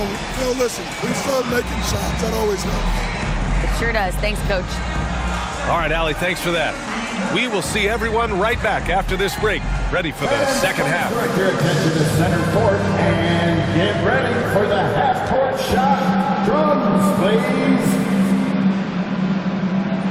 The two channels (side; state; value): both; identical; correlation 1.00